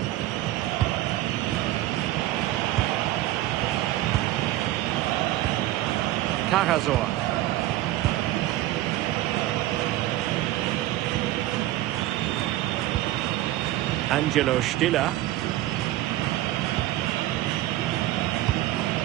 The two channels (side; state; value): left; quieter; 15.5 dB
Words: Karasor. Angelo Stiller.